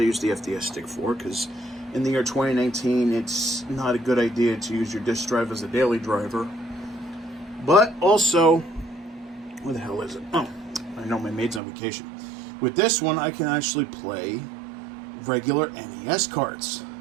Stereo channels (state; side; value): drops out; left; at 11.6 s